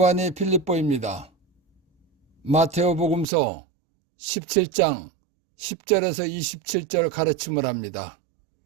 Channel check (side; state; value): left; drops out; at 3.2 s